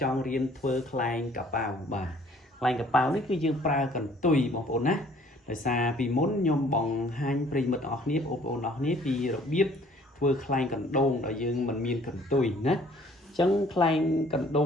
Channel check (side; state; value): both; normal; correlation 0.57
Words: ចង់រៀនធ្វើខ្លែងកប៉ាវបាទខ្លែងកប៉ាវនេះគឺយើងប្រើកន្ទុយបងប្អូនណាដោយសារពីមុនខ្ញុំបង្ហាញប្រិយមិត្តទាំងអស់គ្នាបងប្អូនទាំងអស់គ្នាពីរបៀបធ្វើខ្លែងកណ្ដូងដែលយើងមិនមានកន្ទុយណាអញ្ចឹងខ្លែងកណ្ដូ